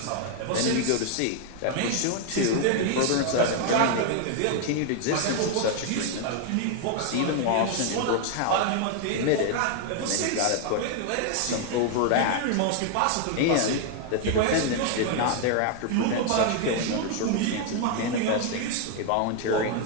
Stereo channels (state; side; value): different; both; correlation 0.00